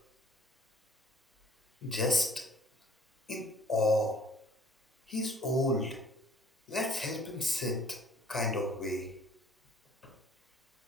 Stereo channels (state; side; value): normal; both; correlation 0.55